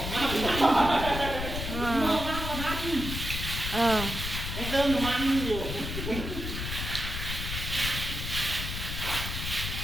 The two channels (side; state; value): left; noise; rumble, 5 dB below the sound